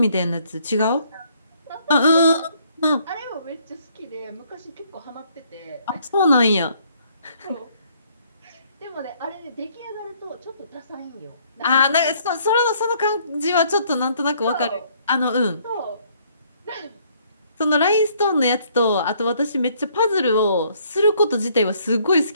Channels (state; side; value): inverted; both; correlation -0.65